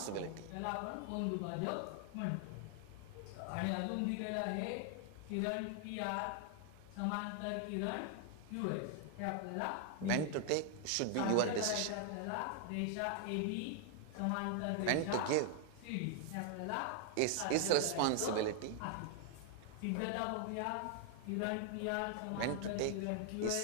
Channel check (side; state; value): both; different; correlation 0.00